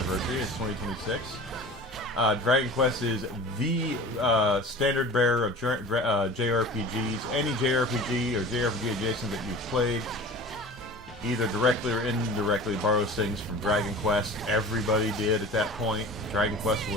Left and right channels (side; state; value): both; normal; correlation 0.39